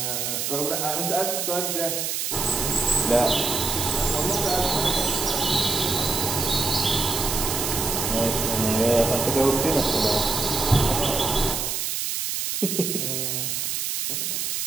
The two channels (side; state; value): right; noise; hiss, 1 dB below the sound